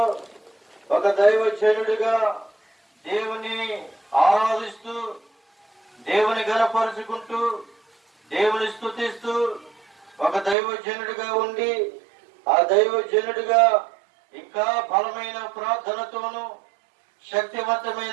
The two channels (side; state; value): left; drops out; at 10.6 s